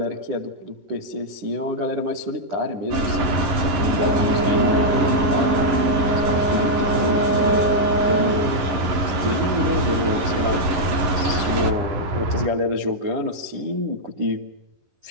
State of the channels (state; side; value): late; left; 11 ms